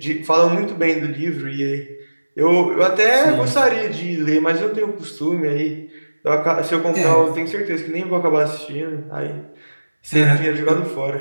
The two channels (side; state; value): both; inverted; correlation -1.00